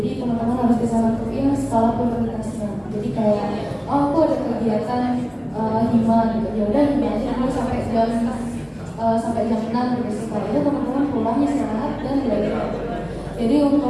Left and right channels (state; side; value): identical; both; correlation 1.00